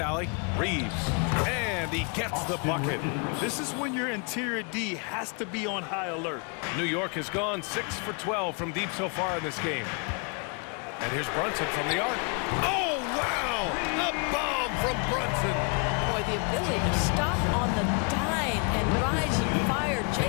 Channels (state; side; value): quieter; right; 36.6 dB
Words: Reeves. And he gets the bucket. This is when your interior D has to be on high alert. New York has gone 6 for 12 from deep so far in this game. And here's Brunson from the arc. Oh, wow! A bomb from Brunson. Boy, the ability to stop on the dime and rise and fire